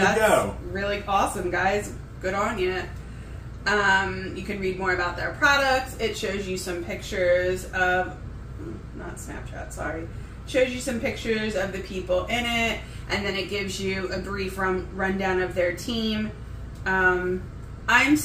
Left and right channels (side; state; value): both; identical; correlation 1.00